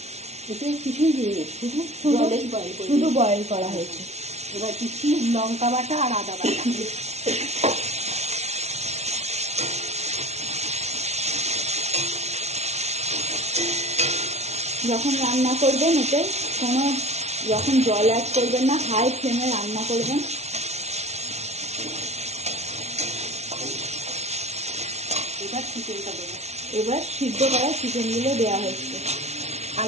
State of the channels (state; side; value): late; left; 0.31 ms